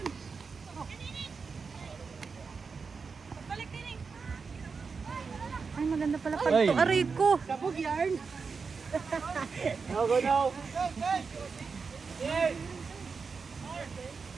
Ay, maganda pala pag Ay. to. Aray ko. Sabog yarn. No, go, no!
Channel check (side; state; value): left; quieter; 5.1 dB